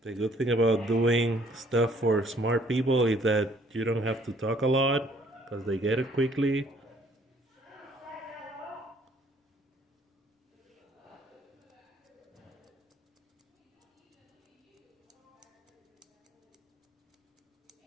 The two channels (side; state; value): both; normal; correlation 0.62